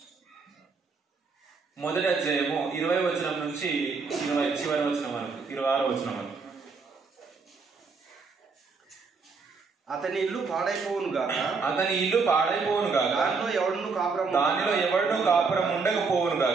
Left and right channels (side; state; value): left; quieter; 4.7 dB